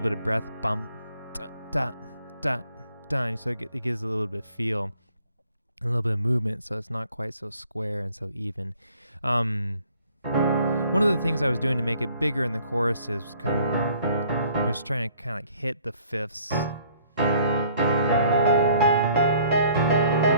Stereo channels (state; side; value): inverted; both; correlation -0.59